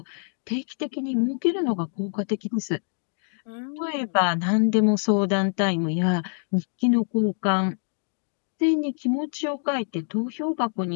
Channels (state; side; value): silent; right; 61 dB below the other